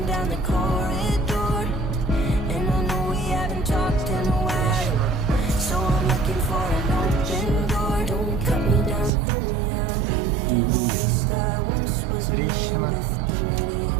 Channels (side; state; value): left; drops out; at 9.1 s